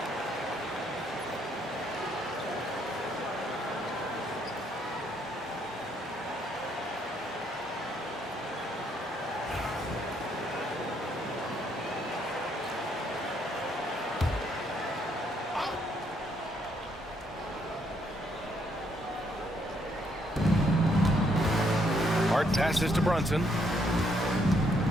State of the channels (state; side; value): normal; both; correlation 0.71